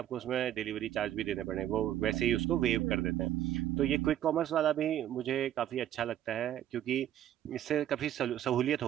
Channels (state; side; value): quieter; left; 11.7 dB